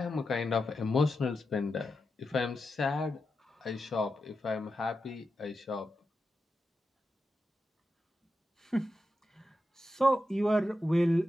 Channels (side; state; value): both; normal; correlation 0.89